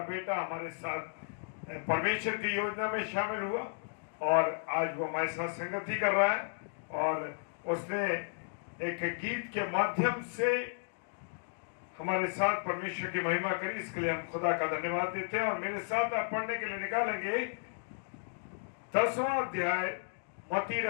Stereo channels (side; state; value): right; silent; digital silence